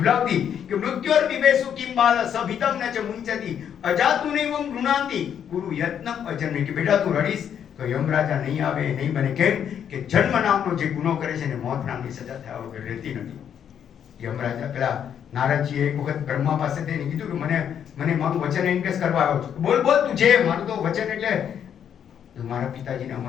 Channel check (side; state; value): right; quieter; 8.7 dB